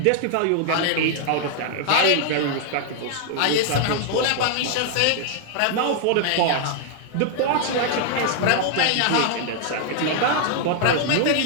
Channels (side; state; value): both; different; correlation 0.00